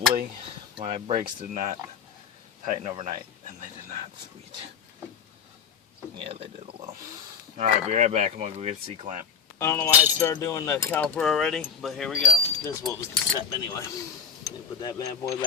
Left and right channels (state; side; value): quieter; right; 6.4 dB